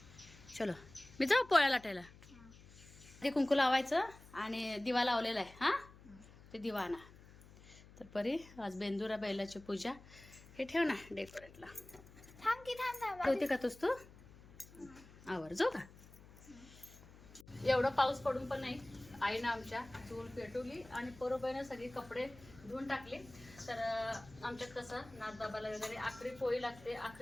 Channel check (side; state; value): left; noise; hum, 21 dB below the sound